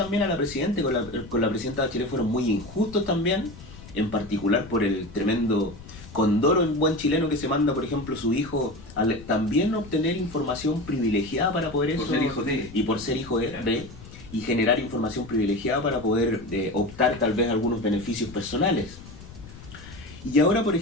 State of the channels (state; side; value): noise; left; rumble, 17 dB below the sound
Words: a la presidenta, con la presidenta Bachelet fueron muy injustos también, en particular por el tremendo condoro en buen chileno que se manda, por ejemplo, su hijo a también obtener información privilegiada para poder eso, por ser hijo de, y por ser hijo de y generar información privilegiada para poder optar tal vez a algunos beneficios personales. Y ahora, por